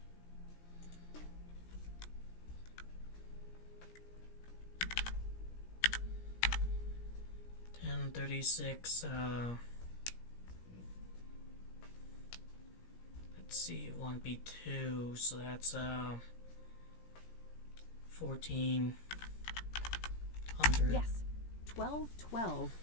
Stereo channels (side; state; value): right; late; 17 ms